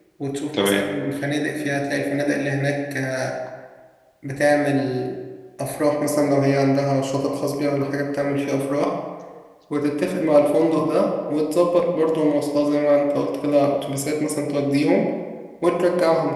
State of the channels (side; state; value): both; identical; correlation 1.00